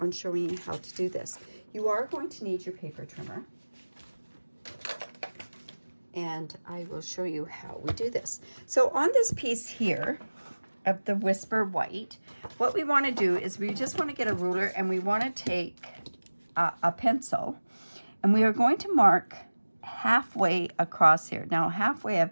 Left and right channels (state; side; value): inverted; both; correlation -1.00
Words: showing you how to do this. You are going to need your paper trimmer, and I will show you how we do this. So on this piece here of the Whisper White, what we want to do is we just want to get a ruler, and we want to take a pencil, and we are going to mark halfway across here. Now halfway of